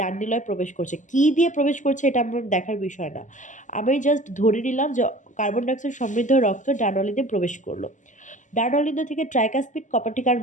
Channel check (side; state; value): right; late; 0.36 ms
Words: নিলয়ে প্রবেশ করছে, কি দিয়ে প্রবেশ করছে এটা আমার দেখার বিষয় না, আমি জাস্ট ধরে নিলাম যে কার্বন ডাইঅক্সাইড সমৃদ্ধ রক্ত ডান অলিন্দে প্রবেশ করলো। ডান অলিন্দ থেকে ট্রাইকাসপিড কপাটিকার